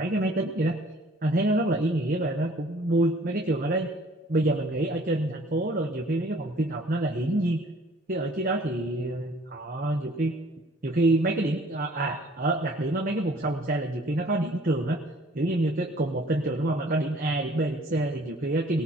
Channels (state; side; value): normal; both; correlation 0.55